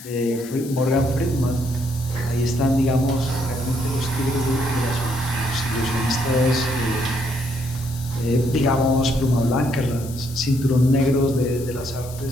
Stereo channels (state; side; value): noise; left; hiss, 16 dB below the sound